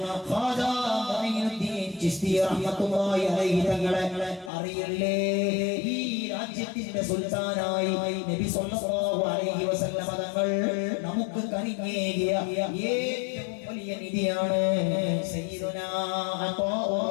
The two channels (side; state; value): right; drops out; at 4.5 s